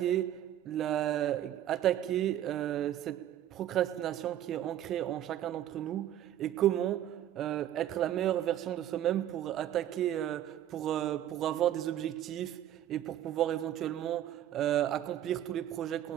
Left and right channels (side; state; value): left; quieter; 11.8 dB